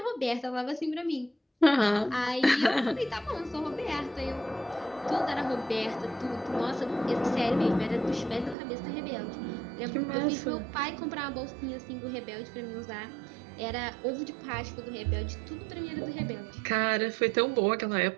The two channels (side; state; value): left; drops out; at 8.6 s